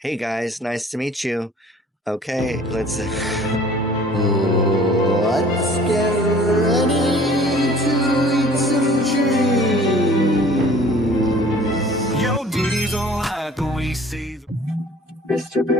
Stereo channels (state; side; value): normal; both; correlation 0.50